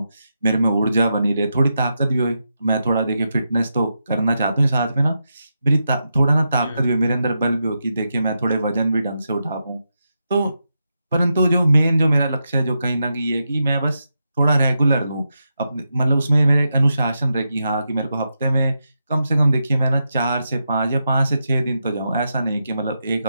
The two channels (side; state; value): both; inverted; correlation -0.86